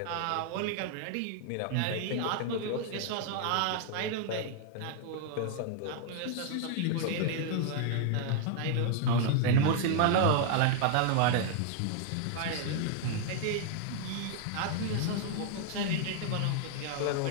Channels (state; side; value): different; both; correlation 0.00